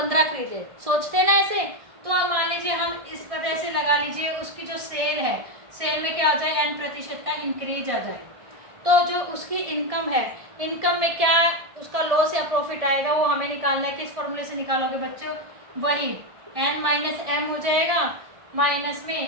खरीदे, सोचते हैं ना ऐसे, तो आप मान लीजिए हम इस वजह से लगा लीजिए उसकी जो सेल है, सेल में क्या आ जाए n% का इंक्रीज आ जाए, तो जो उसकी इनकम है, इनकम में क्या उसका लॉस या प्रॉफिट आएगा वो हमें निकालना है, किस फॉर्मूले से निकालोगे बच्चों, वही n-m हो जाएगा, माइनस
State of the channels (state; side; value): late; left; 1.6 ms